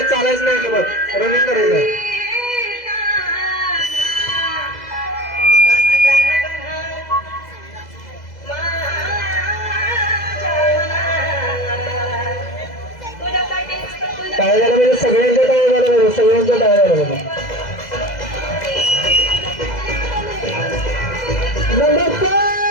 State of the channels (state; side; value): late; right; 2.0 ms